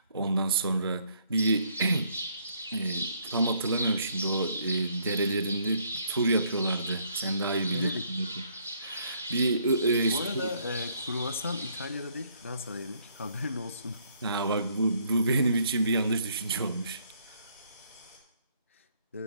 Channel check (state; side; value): inverted; both; correlation -0.67